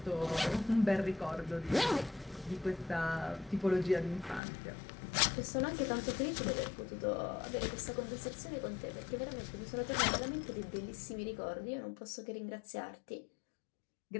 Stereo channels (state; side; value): drops out; right; at 4.4 s